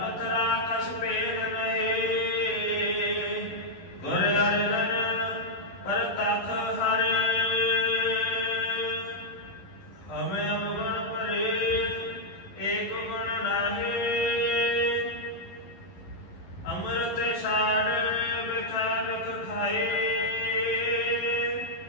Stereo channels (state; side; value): late; right; 11 ms